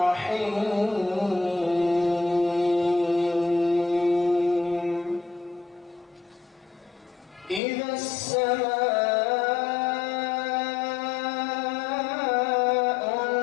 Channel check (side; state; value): right; drops out; at 7.6 s